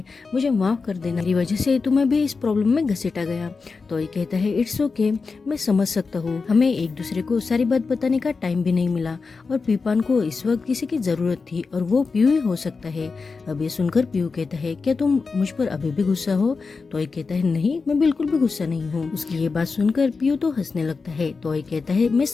मुझे माफ कर देना, मेरी वजह से तुम्हें भी इस प्रॉब्लम में घसीटा गया। तो आई कहता है इट्स ओके, मैं समझ सकता हूँ, हमें एक दूसरे को सारी बात बताने का टाइम भी नहीं मिला और पिपेन को इस वक्त किसी की जरूरत थी और वो पीयू ही हो सकता है। अब ये सुनकर पीयू कहता है क्या तुम मुझ पर अभी भी गुस्सा हो। तो आई कहता है नहीं, मैं बिल्कुल भी गुस्सा नहीं हूँ। उसकी ये बात सुनकर पीयू तो हंसने लगता है। तो आई कहता है मैं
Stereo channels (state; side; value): quieter; right; 4.5 dB